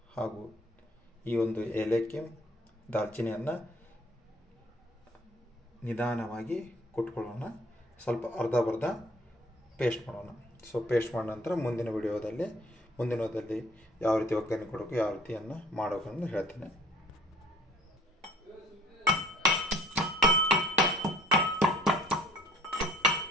ಹಾಗೂ ಈ ಒಂದು ಏಲಕ್ಕಿ, ದಾಲ್ಚಿನ್ನಿಯನ್ನು ನಿಧಾನವಾಗಿ ಕುಟ್ಕೊಳ್ಳೋಣ. ಸ್ವಲ್ಪ ಅರ್ಧ ಪೇಸ್ಟ್ ಮಾಡೋಣ. ಸೊ ಪೇಸ್ಟ್ ಮಾಡಿದ ನಂತರ ಮುಂದಿನ ವಿಡಿಯೋದಲ್ಲಿ ಯಾವ ರೀತಿ ಒಗ್ಗರಣೆ ಕೊಡಬೇಕು, ಯಾವ ರೀತಿಯನ್ನು ಮಾಡಬೇಕು ಅಂತ ಹೇಳ್ತೇನೆ.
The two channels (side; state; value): both; normal; correlation 0.56